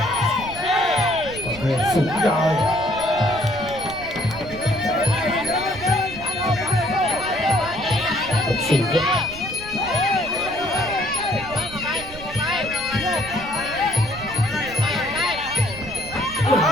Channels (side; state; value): right; noise; rumble, 15 dB below the sound